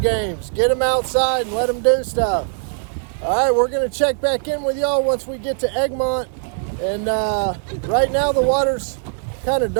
Get them outside and let them do stuff. All right, we're gonna check back in with y'all once we get to Egmont. And right now the water's kind of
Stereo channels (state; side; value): silent; left; digital silence